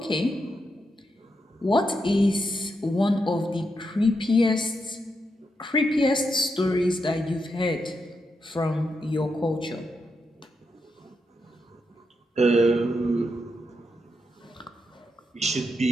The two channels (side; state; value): both; normal; correlation 0.84